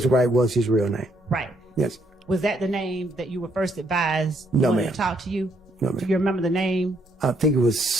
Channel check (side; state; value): both; normal; correlation 0.72